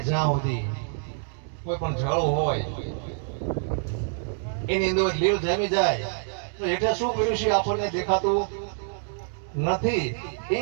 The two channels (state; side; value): silent; left; digital silence